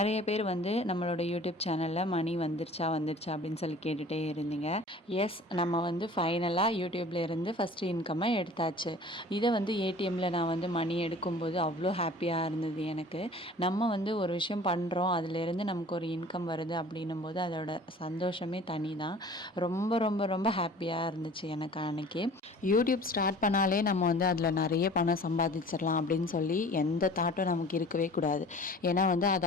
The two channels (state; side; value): normal; both; correlation 0.46